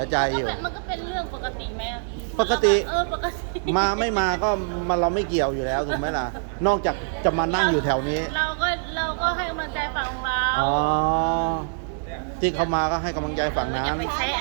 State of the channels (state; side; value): silent; left; 61 dB below the other